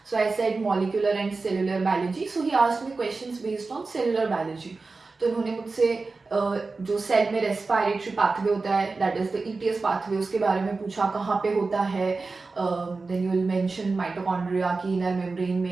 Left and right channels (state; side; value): quieter; left; 3.9 dB